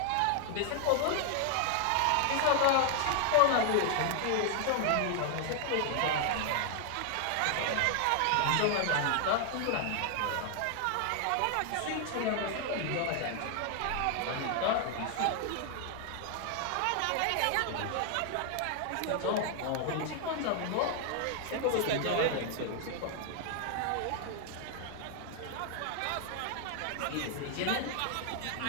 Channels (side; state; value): both; different; correlation 0.00